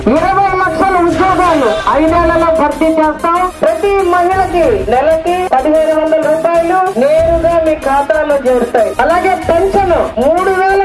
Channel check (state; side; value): identical; both; correlation 1.00